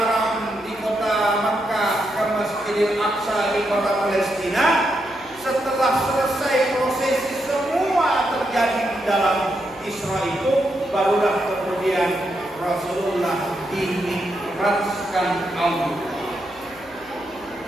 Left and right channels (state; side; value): noise; left; hum, 27 dB below the sound